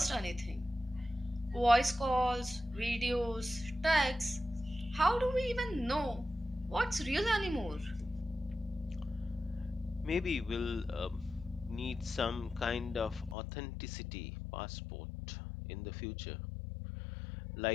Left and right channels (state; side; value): drops out; right; at 13.4 s